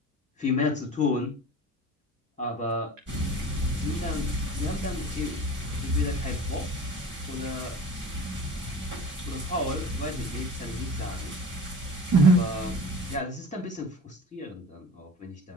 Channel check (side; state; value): both; normal; correlation 0.38